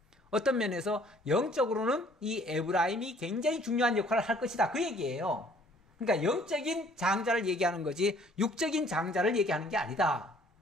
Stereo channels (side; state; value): both; normal; correlation 0.58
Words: 어떤 면에서 영적으로는 이 에브라임이 굉장히 중요한 역할을 할 것이다. 그 얘기예요. 그러니까 영적인 장자를 얘기하는 거지 육적인 장자를 얘기하는 게 아니다.